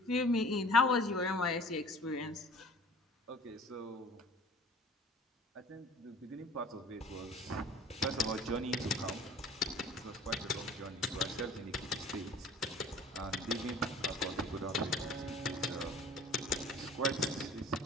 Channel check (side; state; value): both; normal; correlation 0.47